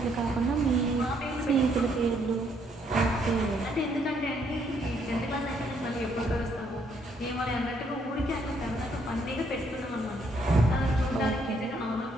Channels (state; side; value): normal; both; correlation 0.70